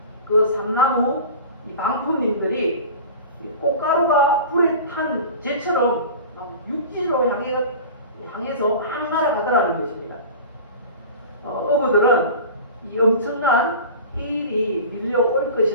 그 삼나무 이 방풍님들이 꽃가루가 불에 탄 재처럼 막 육지로 향해서 막 날아가더라는 것입니다. 어부들은 이 엄청난 해일이 밀려올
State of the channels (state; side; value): inverted; both; correlation -0.36